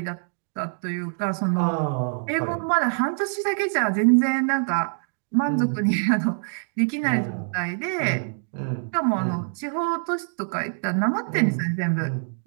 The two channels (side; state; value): left; silent; digital silence